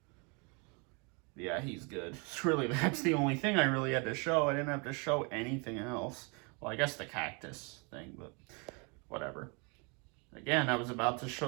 Yeah, he's good. It's really, that's the only thing I really had to show. I didn't have to show anything else. Well, I guess the cactus thing, but whatever. Again, I was about to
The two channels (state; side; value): quieter; left; 32.8 dB